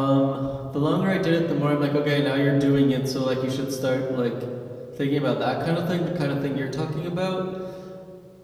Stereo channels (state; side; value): identical; both; correlation 1.00